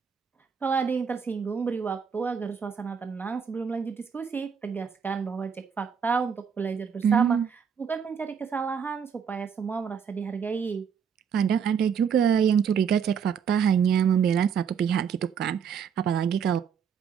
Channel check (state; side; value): quieter; left; 7.1 dB